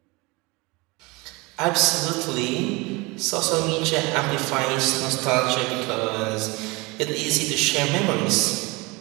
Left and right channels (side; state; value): left; quieter; 25.2 dB